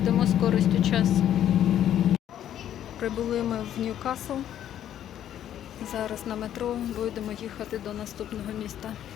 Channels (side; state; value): right; quieter; 10.8 dB